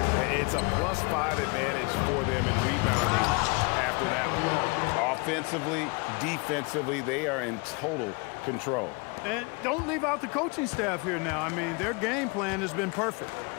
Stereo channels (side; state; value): right; quieter; 30.2 dB